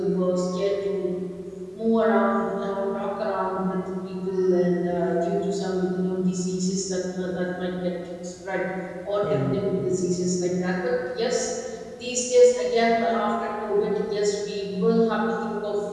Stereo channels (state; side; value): identical; both; correlation 1.00